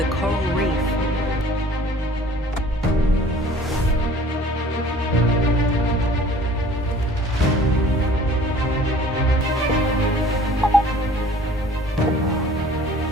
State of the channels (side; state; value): both; normal; correlation 0.50